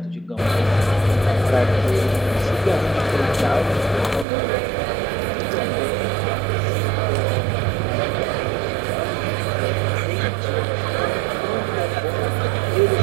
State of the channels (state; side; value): drops out; left; at 4.2 s